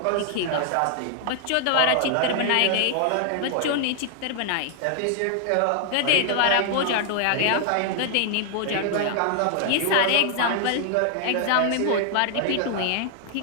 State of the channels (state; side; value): different; both; correlation 0.00